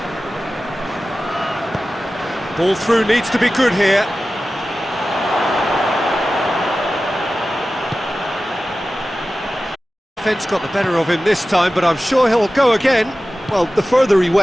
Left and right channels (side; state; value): both; normal; correlation 0.95